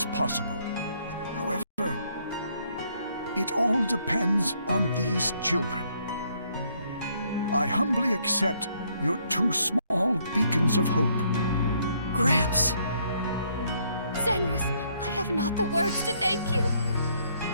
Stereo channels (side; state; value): both; inverted; correlation -0.69